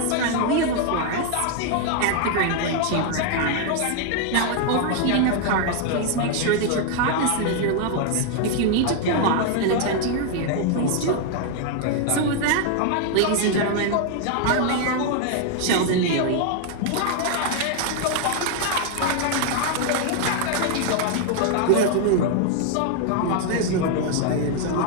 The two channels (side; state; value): both; different; correlation 0.00